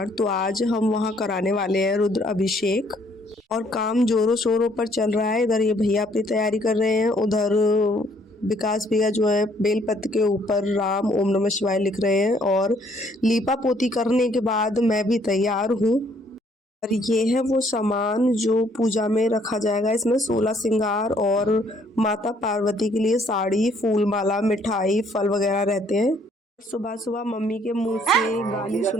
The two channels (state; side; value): normal; both; correlation 0.65